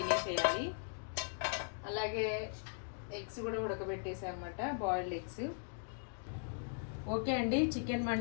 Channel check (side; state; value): right; silent; digital silence